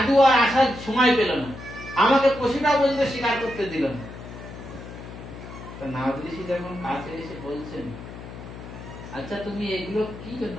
আর আসার সময় পেল না, আমাকে পশুটা পর্যন্ত স্বীকার করতে দিল না। তো নারদ ঋষি যখন কাছে এসে বলছেন, আচ্ছা তুমি এগুলো কি জন্য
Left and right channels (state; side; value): noise; left; hum, 13 dB below the sound